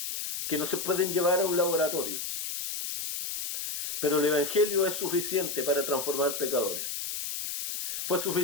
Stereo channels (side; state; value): left; noise; hiss, 4 dB below the sound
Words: que no se pueden llevar a un laboratorio. Pero el Evangelio es suficiente para transformar pecadores. Fue